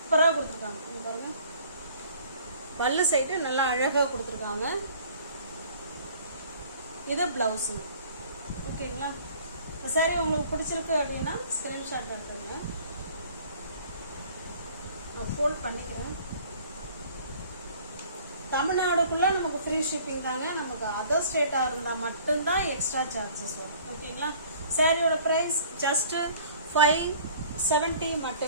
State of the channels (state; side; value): inverted; both; correlation -0.52